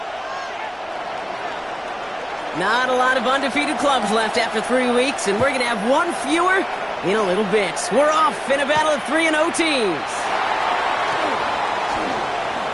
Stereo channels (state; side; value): identical; both; correlation 1.00